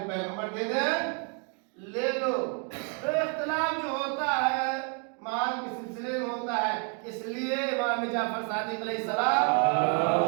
پیغمبر دے دے لے لو۔ تو اختلاف جو ہوتا ہے مال کے سلسلے میں ہوتا ہے، اس لیے امام جعفر صادق علیہ السلام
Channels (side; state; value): left; quieter; 38.4 dB